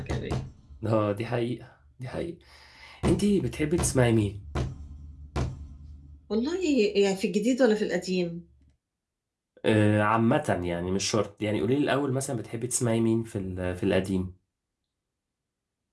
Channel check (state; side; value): identical; both; correlation 1.00